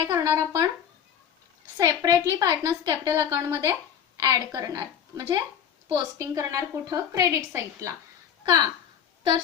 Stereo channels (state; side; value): quieter; right; 8.6 dB